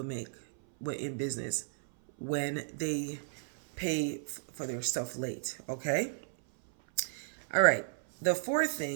make in business when they pay for their stuff late. Okay? All right. The fourth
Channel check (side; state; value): left; silent; 55 dB below the other